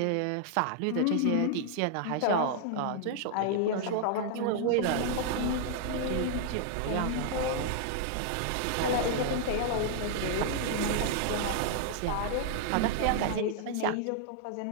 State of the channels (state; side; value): different; both; correlation -0.01